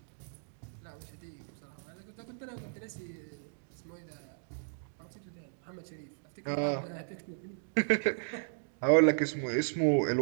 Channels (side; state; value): left; silent; digital silence